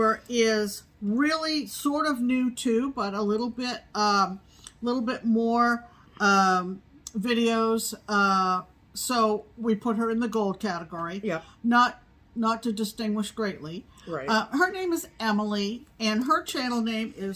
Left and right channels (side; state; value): both; identical; correlation 1.00